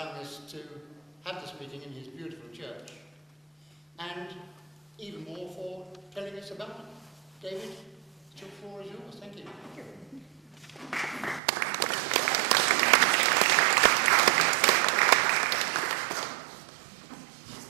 us to have this meeting in his beautiful church, and even more for telling us about it. David, the floor is yours. Thank you. Thank you.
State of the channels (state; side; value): drops out; left; at 11.4 s